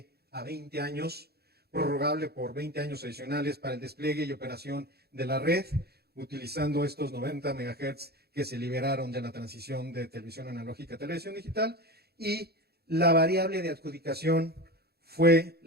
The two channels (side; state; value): left; late; 0.46 ms